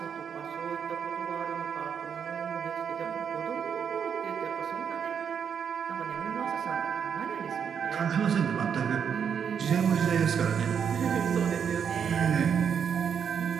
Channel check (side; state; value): left; quieter; 7.4 dB